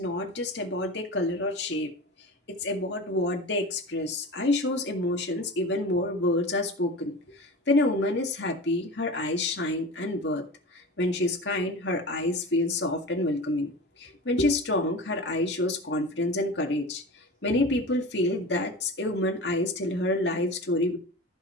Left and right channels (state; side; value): normal; both; correlation 0.32